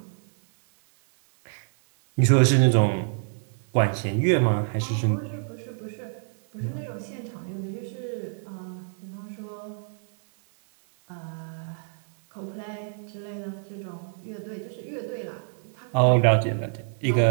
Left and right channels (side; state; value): left; silent; 60 dB below the other